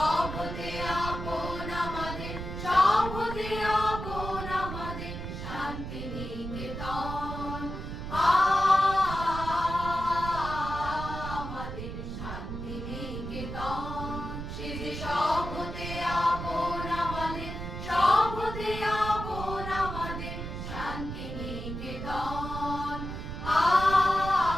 হতে আপন আমাদের, সব হতে আপন আমাদের শান্তি নিকেতন। আমাদের শান্তি নিকেতন, সে যে সব হতে আপন আমাদের, সব হতে আপন আমাদের শান্তি নিকেতন।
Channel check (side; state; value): right; noise; rumble, 7 dB below the sound